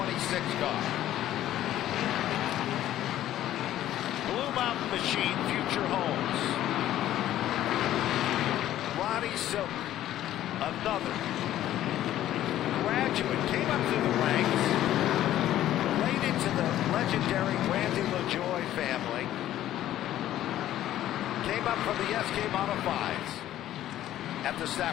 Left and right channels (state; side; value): quieter; right; 12.9 dB